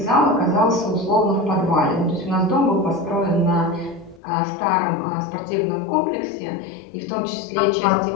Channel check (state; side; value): drops out; right; at 4.2 s